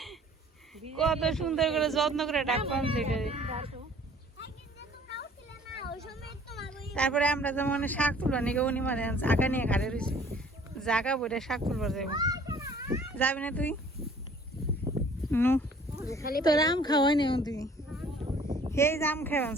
কত সুন্দর করে যত্ন করে ডাক পানছে এটা। তারপরে আমরা যেমন শাক তুলবা নিকে উনি মানে জাগা নিয়ে ঘাড়ে রয়েছে, জাগা বইটা শাক তুলবার যাইব। যাবি না তুই? নু তোর আম খাওয়াই নি তুই, সেই আম খাওয়াছ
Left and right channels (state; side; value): normal; both; correlation 0.54